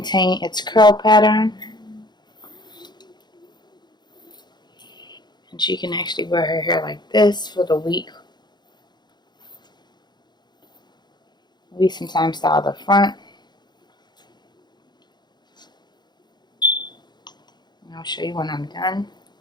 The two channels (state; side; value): late; right; 0.21 ms